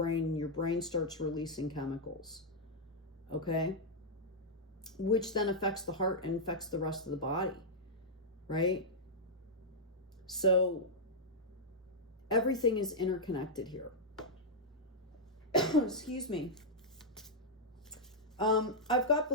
and your brain starts releasing chemicals, okay? Which then affects the heart and affects the rest of the body, right? So everything is interconnected here. Excuse me. I've got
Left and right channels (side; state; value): both; normal; correlation -0.06